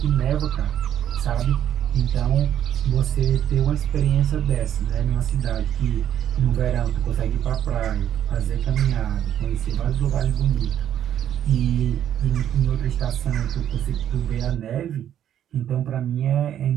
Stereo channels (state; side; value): quieter; left; 10.4 dB